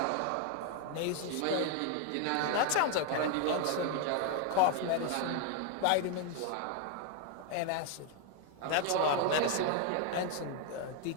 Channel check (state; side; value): different; both; correlation 0.01